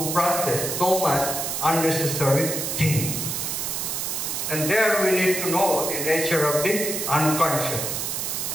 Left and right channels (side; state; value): right; noise; hiss, 2 dB below the sound